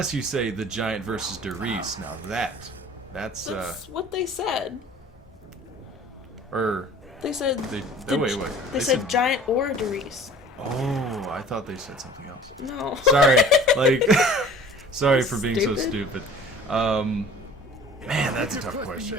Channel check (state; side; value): normal; both; correlation 0.47